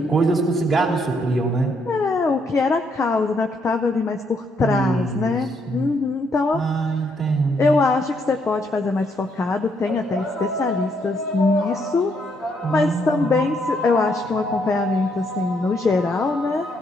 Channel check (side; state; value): both; normal; correlation 0.73